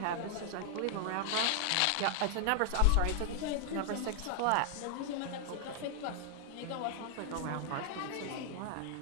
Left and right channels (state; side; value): different; both; correlation 0.00